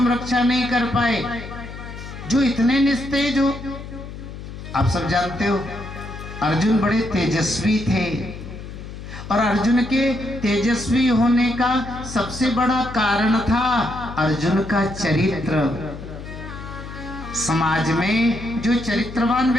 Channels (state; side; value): noise; left; hum, 11 dB below the sound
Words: रक्षा नहीं कर पाए, जो इतने निस्तेज हो? आप सब जानते हो अर्जुन बड़े तेजस्वी थे, और अर्जुन के तेजस्वी होने का सबसे बड़ा कारण था अर्जुन का चरित्र। समाज में जो चरित्रवान